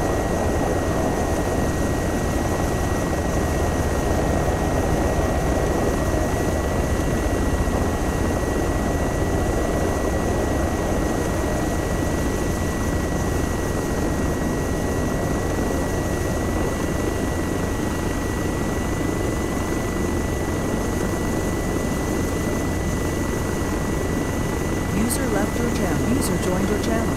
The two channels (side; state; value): both; identical; correlation 1.00